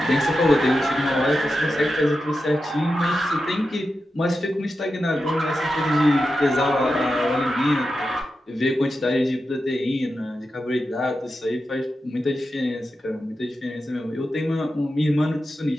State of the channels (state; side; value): normal; both; correlation 0.90